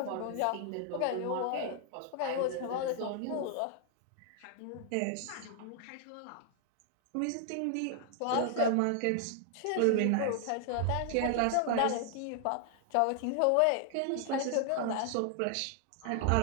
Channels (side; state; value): both; different; correlation 0.00